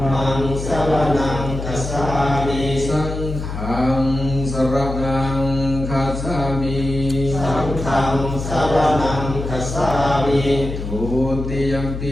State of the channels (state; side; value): noise; left; hum, 6 dB below the sound